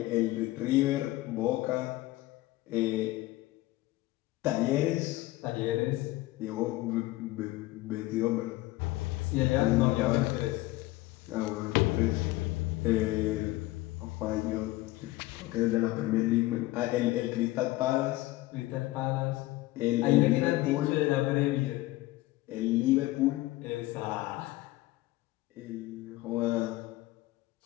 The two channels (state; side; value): quieter; right; 18.3 dB